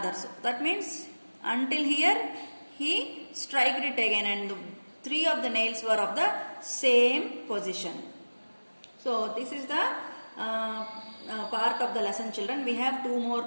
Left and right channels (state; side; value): inverted; both; correlation -1.00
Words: That means until here he struck it again, and three of the nails were of the same position. So this is the part of the lesson, children. We have 2 more